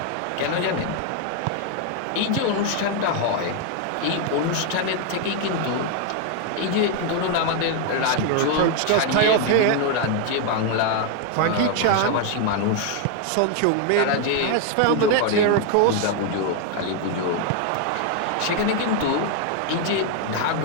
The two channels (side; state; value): both; different; correlation 0.00